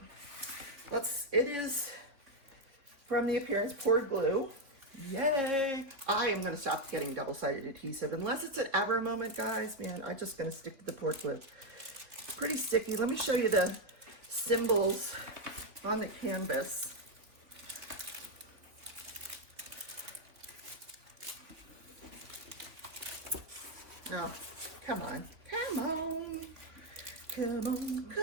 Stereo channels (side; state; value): left; late; 3.6 ms